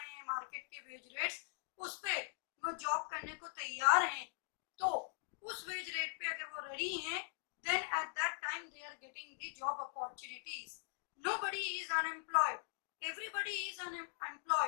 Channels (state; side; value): silent; right; digital silence